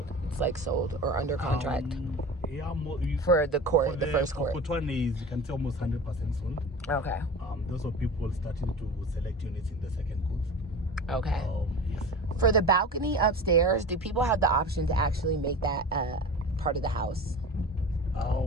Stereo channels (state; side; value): normal; both; correlation 0.33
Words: It's like sold or under contract Yeah, for the court, for the first court. Court 1 is, you can say, almost 100% sold. Okay. Those are people starting to select units in the second court. Okay. Yes. For the balcony upstairs, do people have the option to actually make that part of the house?